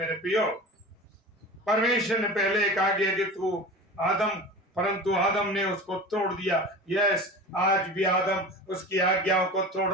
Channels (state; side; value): normal; both; correlation 0.34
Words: प्रियो, परमेश्वर ने पहले कहा कि तू आदम, परंतु आदम ने उसको तोड़ दिया। यस, आज भी आदम उसकी आज्ञाओं को तोड़